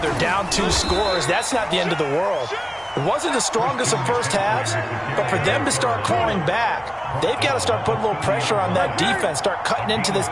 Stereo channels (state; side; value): identical; both; correlation 1.00